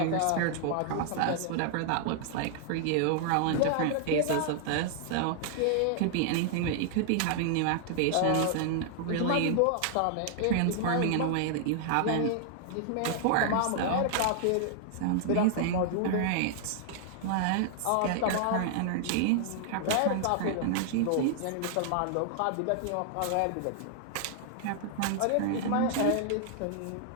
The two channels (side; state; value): both; different; correlation -0.01